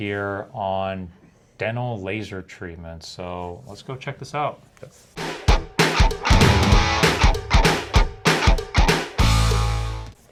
on dental laser treatment. So let's go check this out.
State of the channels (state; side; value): identical; both; correlation 1.00